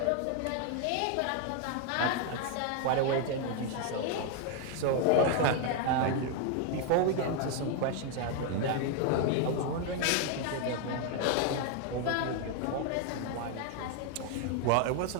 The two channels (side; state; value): both; different; correlation 0.00